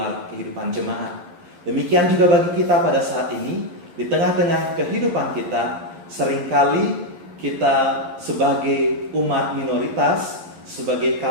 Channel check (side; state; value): left; late; 11 ms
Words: kehidupan jemaat. Demikian juga bagi kita pada saat ini, di tengah-tengah kehidupan kita, seringkali kita sebagai umat minoritas, sebagai